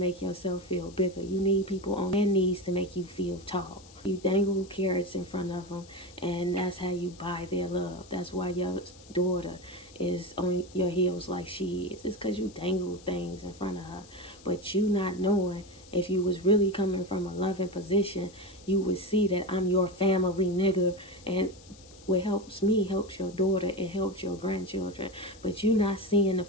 yourself feel bigger. You need people on their knees to make you feel tall. You dangle carrots in front of them and that's how you buy their love. That's why your daughter is on your heels like she is. It's because you dangle things in front of her. But you not knowing if you was really coming from a loving position, you would see that I'm your family nigga and what helps me helps your daughter, it helps your grandchildren. But you not seeing the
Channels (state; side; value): noise; left; hiss, 23 dB below the sound